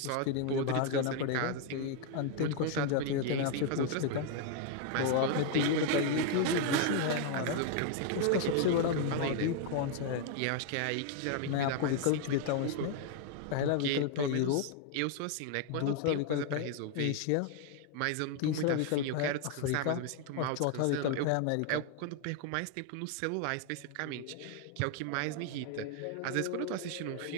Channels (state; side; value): different; both; correlation 0.00